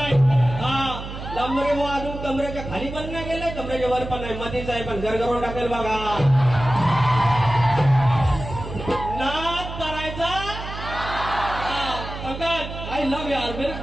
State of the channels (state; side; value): noise; right; hum, 9 dB below the sound